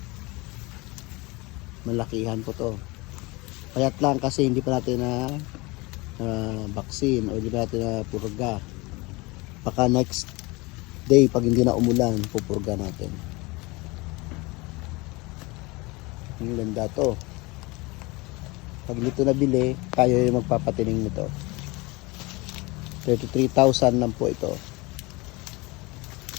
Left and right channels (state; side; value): quieter; right; 24.2 dB